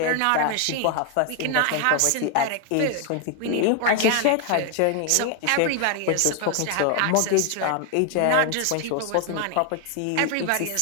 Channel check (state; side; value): different; both; correlation 0.00